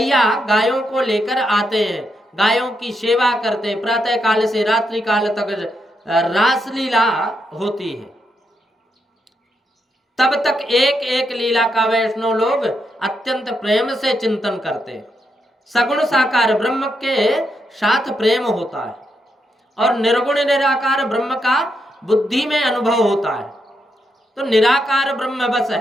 गायों को लेकर आते हैं, गायों की सेवा करते हैं। प्रातः काल से रात्रि काल तक रासलीला होती है। तब तक एक एक लीला का वैष्णव लोग अत्यंत प्रेम से चिंतन करते हैं। सगुण साकार ब्रह्म के साथ प्रेम होता है और निर्गुण निराकार ब्रह्म का बुद्धि में अनुभव होता है। तो निराकार ब्रह्म बस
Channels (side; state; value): both; normal; correlation 0.81